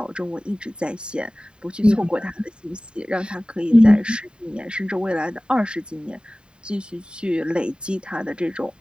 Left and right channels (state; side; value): late; left; 0.050 ms